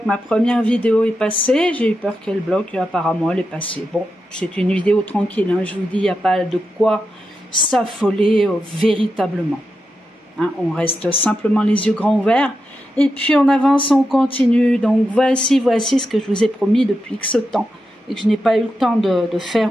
ma première vidéo est passée. J'ai eu peur qu'elle bloque. Apparemment, elle est passée. Bon, c'est une vidéo tranquille. Hein. Je vous dis, il n'y a pas de quoi s'affoler véritablement. Hein, on reste simplement les yeux grands ouverts. Et puis, on avance, on continue. Donc, voici ce que je vous ai promis depuis X temps. Et que je n'ai pas eu le temps de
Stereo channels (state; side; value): normal; both; correlation 0.88